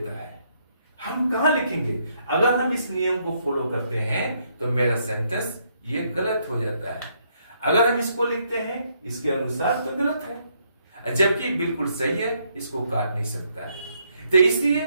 है। हम कहां लिखेंगे? अगर हम इस नियम को फॉलो करते हैं तो मेरा सेंटेंस ये गलत हो जाता है। अगर हम इसको लिखते हैं इसके अनुसार तो गलत है, जबकि बिल्कुल सही है, इसको काट नहीं सकता है। तो इसलिए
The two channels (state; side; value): inverted; both; correlation -0.73